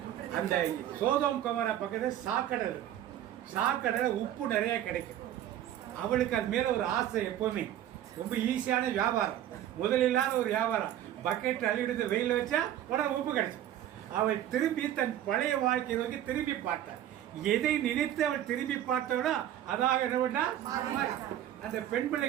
அந்த சோதோம் குமரா பக்கத்துல சாக்கடல் உப்பு நிறைய கிடைக்கும். அவளுக்கு அது மேல ஒரு ஆசை. எப்பவுமே ரொம்ப ஈஸியான வியாபாரம், முதலில்லாத ஒரு வியாபாரம். பக்கெட் அள்ளிவிடுத்து வெயில் வச்சா உடனே உப்பு கிடைக்கும். அவள் திரும்பி தன் பழைய வாழ்க்கையை நோக்கி திரும்பி பார்த்தாள். எதை நினைத்து அவள் திரும்பி பார்த்தவளோ அதாக அந்த பெண்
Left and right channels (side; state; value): left; quieter; 11.7 dB